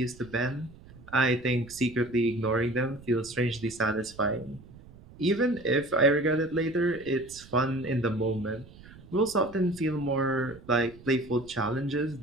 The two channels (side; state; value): right; noise; rumble, 20 dB below the sound